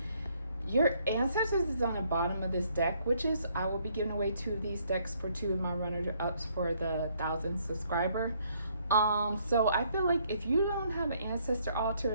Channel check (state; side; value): inverted; both; correlation -0.68